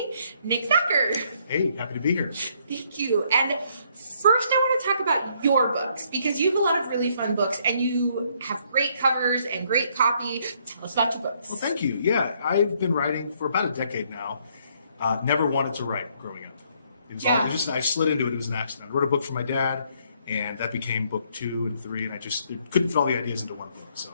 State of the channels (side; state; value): both; inverted; correlation -0.68